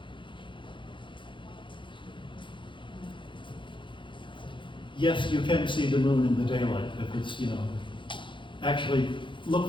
Yes, you can see the moon in the daylight. If it's, actually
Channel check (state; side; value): late; right; 0.24 ms